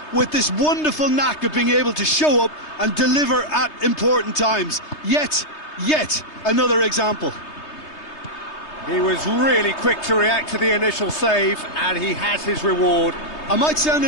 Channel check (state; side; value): late; right; 3.3 ms